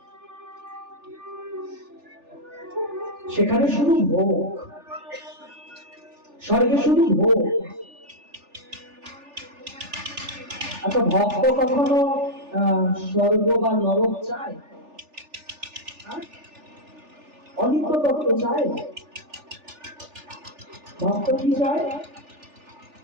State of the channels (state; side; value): late; left; 3.4 ms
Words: সেখানে শুধু ভোগ, স্বর্গে শুধু ভোগ। আচ্ছা, ভক্ত কখনো স্বর্গ বা নরক চায়? অনিত্য তত্ত্ব চায়? ভক্ত কি চায়?